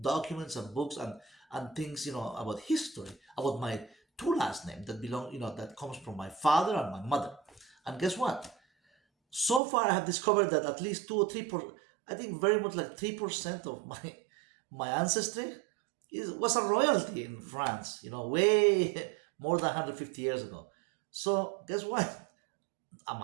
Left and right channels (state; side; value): drops out; left; at 9.6 s